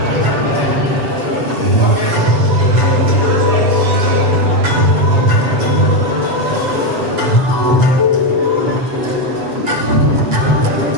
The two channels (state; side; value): late; left; 7.5 ms